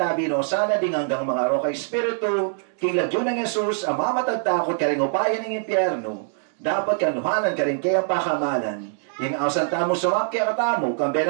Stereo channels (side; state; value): left; silent; digital silence